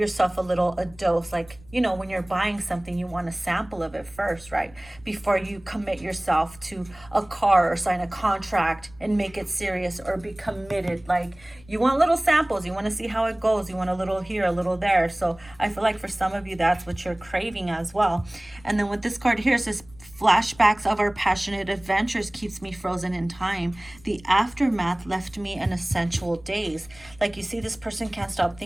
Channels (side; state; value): left; noise; rumble, 23 dB below the sound